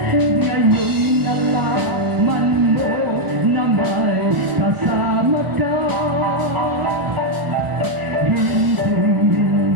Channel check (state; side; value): late; left; 1.4 ms